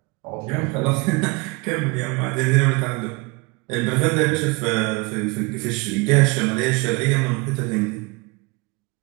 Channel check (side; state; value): left; quieter; 26.4 dB